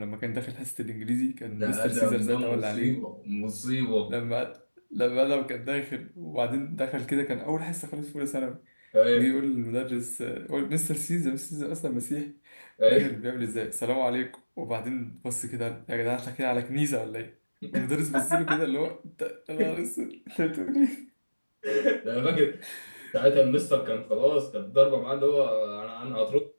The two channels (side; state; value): both; inverted; correlation -1.00